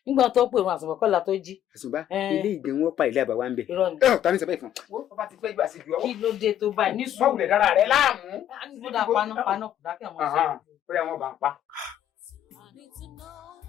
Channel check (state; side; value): quieter; right; 10.9 dB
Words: nígbà tó pè wọn àsùnwọ̀n kọ́lá tó jí. àṣùbá ilé ìgbẹ́ wọn pa ilé àbáwá ń bẹ. ta ni sọ bẹ́ẹ̀ fún. wọ́n bá ti fẹ́ gbà sí ju ọwọ́. kí ló dé tó báyìí ní sùúrù. báwo lè dára rẹ láàmú. nígbà paná kò dákẹ́ àwọn ọ̀sán. ó yà wọ́n bá ń pa.